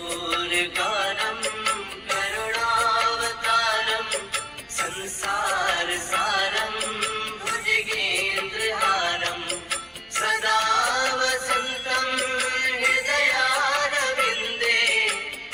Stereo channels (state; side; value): identical; both; correlation 1.00